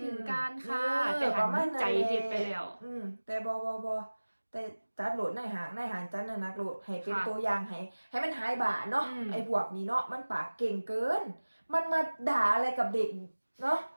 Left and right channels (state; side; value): inverted; both; correlation -1.00